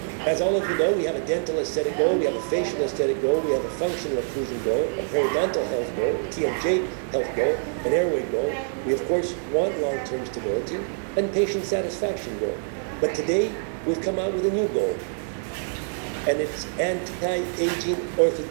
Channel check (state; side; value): silent; left; 61 dB below the other